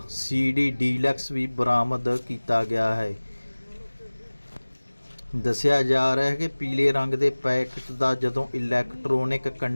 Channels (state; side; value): inverted; both; correlation -1.00